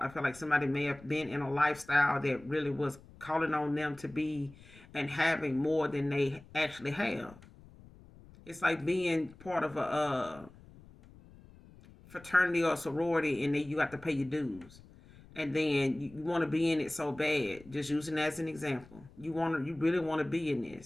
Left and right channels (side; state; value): left; noise; rumble, 22 dB below the sound